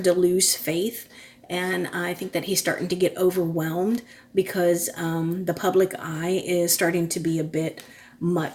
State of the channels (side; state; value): both; identical; correlation 1.00